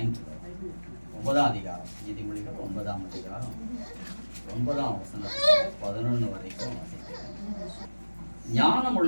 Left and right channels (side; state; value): both; inverted; correlation -1.00